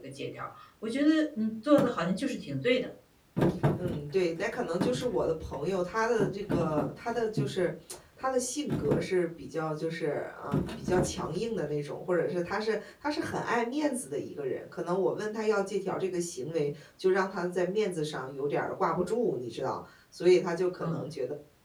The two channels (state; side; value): identical; both; correlation 1.00